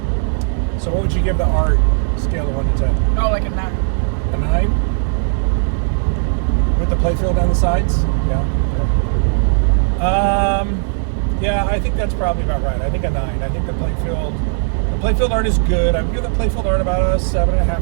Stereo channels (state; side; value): silent; left; digital silence